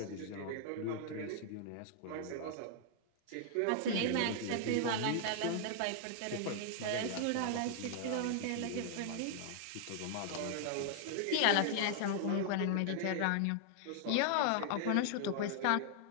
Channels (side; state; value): both; different; correlation -0.01